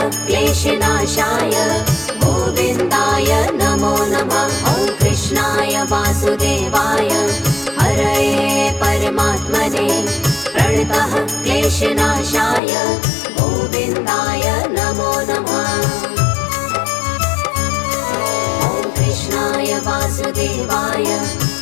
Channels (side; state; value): right; drops out; at 12.6 s